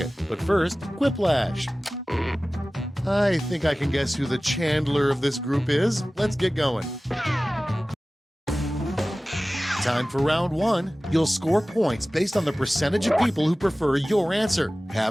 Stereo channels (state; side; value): normal; both; correlation 0.97